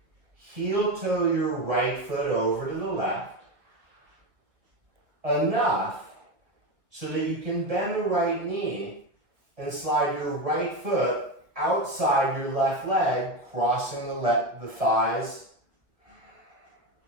Heel toe your right foot over to the left. Enough so that you can bend the right knee and slide your right foot outside your left leg, crossing the thighs.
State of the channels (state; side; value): late; left; 1.6 ms